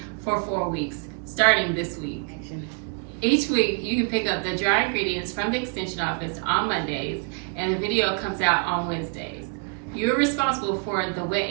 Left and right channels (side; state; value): left; quieter; 38.5 dB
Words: for 4 weeks, starting this week. Each week, you can pick up the dry ingredients from the Extension office on Mondays, and the video comes out on Wednesdays. You're responsible for the wet